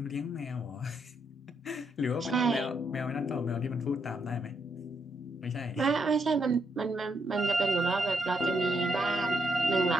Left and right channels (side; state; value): both; normal; correlation 0.78